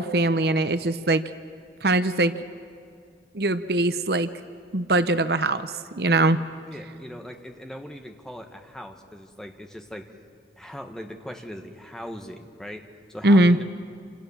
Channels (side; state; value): both; normal; correlation 0.48